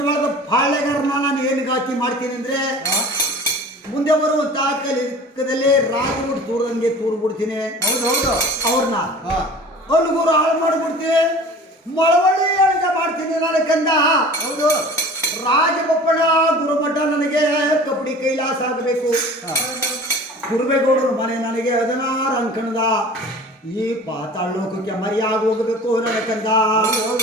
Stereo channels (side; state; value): both; normal; correlation 0.42